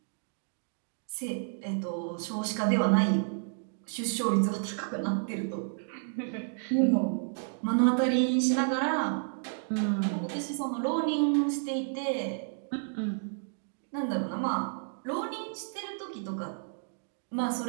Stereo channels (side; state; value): left; silent; digital silence